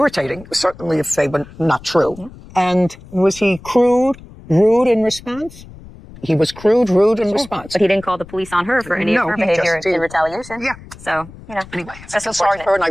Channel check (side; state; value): left; noise; rumble, 19 dB below the sound